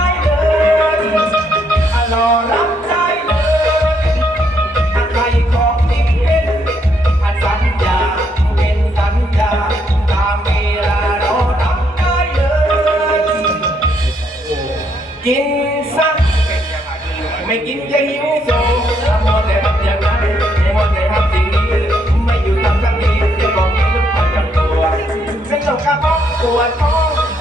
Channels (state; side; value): normal; both; correlation 0.73